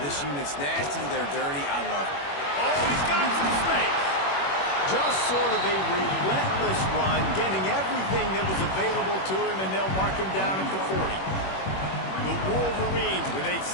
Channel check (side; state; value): right; late; 21 ms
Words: unit's nasty. They're dirty. I love it. Oh, he's got some space. Just sort of a relentless run, getting everything that was available to him, and they'll mark him down at the 40. The Wolverines with a